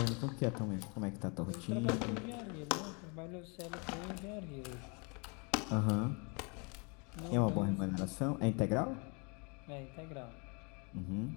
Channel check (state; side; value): quieter; right; 33.4 dB